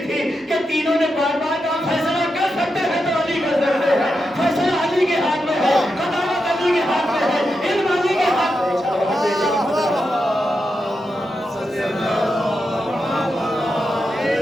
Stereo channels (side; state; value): both; normal; correlation 0.87